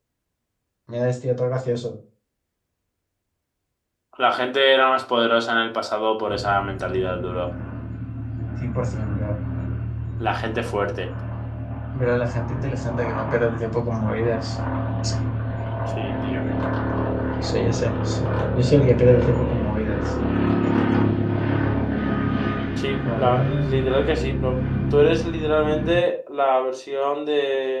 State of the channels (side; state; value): both; identical; correlation 1.00